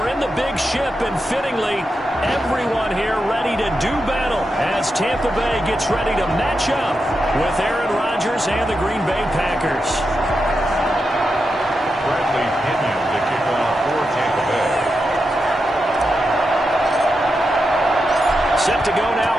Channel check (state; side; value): normal; both; correlation 0.87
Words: in the big ship, and fittingly, everyone here ready to do battle as Tampa Bay gets ready to match up with Aaron Rodgers and the Green Bay Packers. Bradley Pinion to kick off for Tampa Bay. Set to go now